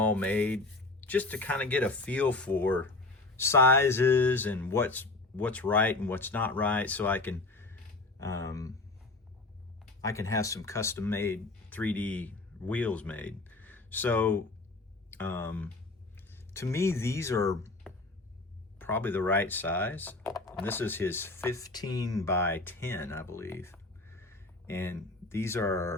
made just to kind of get a feel for sizes and what's right and what's not right, so I can have some custom made 3D wheels made. So to me, these are probably the right size. And this is his 15 by 10, I believe. And these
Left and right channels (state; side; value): quieter; right; 3.1 dB